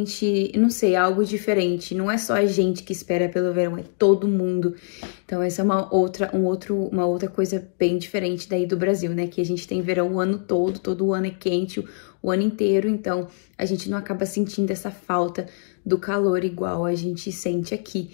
não sei, é algo diferente. Não é só a gente que espera pelo verão, é todo mundo. Então, essa é uma outra coisa bem diferente daí do Brasil, né? Que a gente tem verão o ano todo ano é quente, o ano inteiro, então a gente não acaba sentindo essa falta do calor igual a gente sente aqui,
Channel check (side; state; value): right; silent; 61 dB below the other